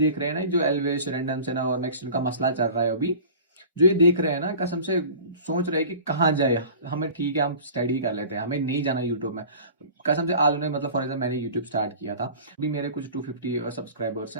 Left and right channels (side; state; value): both; inverted; correlation -0.40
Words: रहे हैं ना, जो एल्वेस रैंडम से ना और मैक्सिन का मसला चल रहा है अभी, जो ये देख रहे हैं ना, कसम से सोच रहे हैं कि कहाँ जाए। हमें ठीक है, हम स्टडी कर लेते हैं, हमें नहीं जाना यूट्यूब में। कसम से आज उन्हें, मतलब फॉर एग्जाम्पल मैंने यूट्यूब स्टार्ट किया था, अभी मेरे कुछ 250 सब्सक्राइबर्स